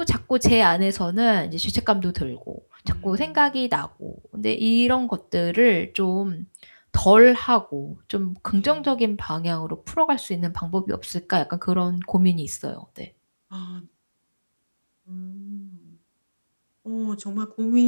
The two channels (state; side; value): inverted; both; correlation -1.00